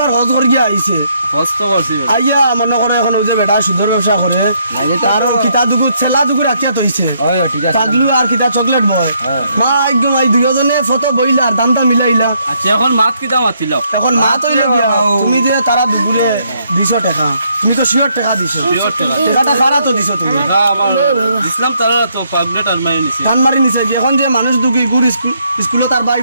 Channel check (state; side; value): inverted; both; correlation -0.72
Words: হজ করে গিয়া আইছে কষ্ট করছি আইয়া মনে করে এখন ওই যে বেটা সুন্দর ব্যবসা করে তারও কিতা দুগু ছেলা দুগু রাখিয়া তৈছে পাগলু আর কিতা চকলেট বয় মা একদম এই দুজনে ফটো বইলা আর দামটা মিলাইলা আচ্ছা এখন মাত কিতা মাতিল এখন মা তৈলে গিয়া তুমি যে তারা দুপুরে 200 টাকা তুমি তো শিওর টাকা দিছো টাকাটা খারা তো দিছো তুমি ইসলাম তারা তো পাগনেট আর মাই নিছি ধান মারি নিছে কি এখন যে মানুষ দুগু ইগুর স্কুলে তার ভাই